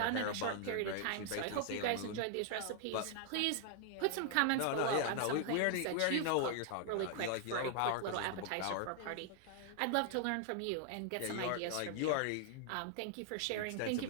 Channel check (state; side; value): different; both; correlation 0.00